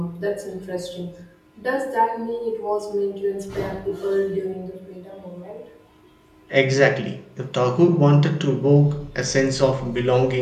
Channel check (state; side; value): identical; both; correlation 1.00